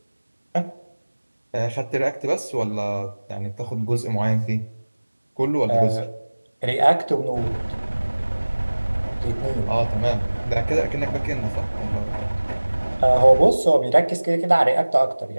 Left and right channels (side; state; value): both; inverted; correlation -1.00